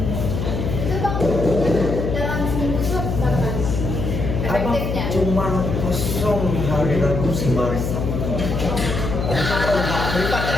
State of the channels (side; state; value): left; noise; hum, 2 dB below the sound